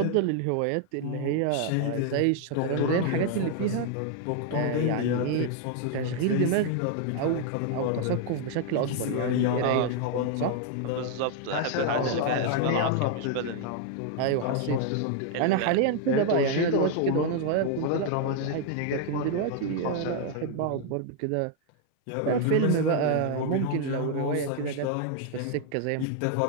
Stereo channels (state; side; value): different; both; correlation 0.00